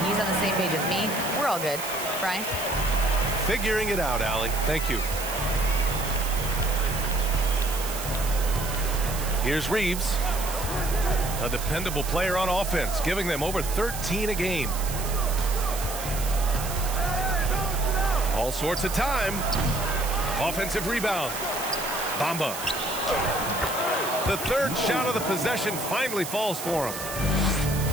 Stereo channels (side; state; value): right; noise; hiss, 8 dB below the sound